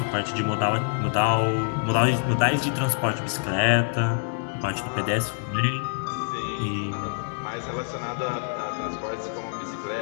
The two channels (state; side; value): silent; right; digital silence